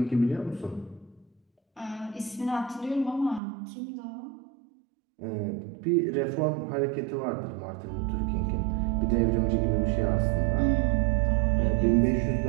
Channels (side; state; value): left; drops out; at 3.4 s